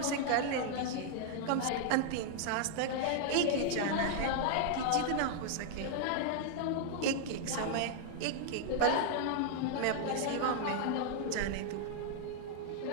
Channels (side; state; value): both; different; correlation 0.00